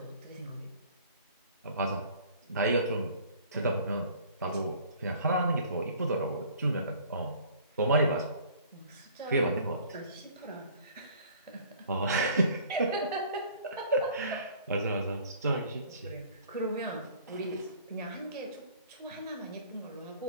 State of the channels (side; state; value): both; inverted; correlation -0.51